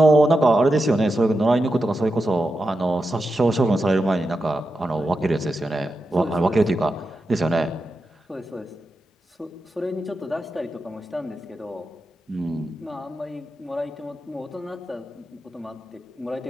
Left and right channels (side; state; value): both; normal; correlation 0.89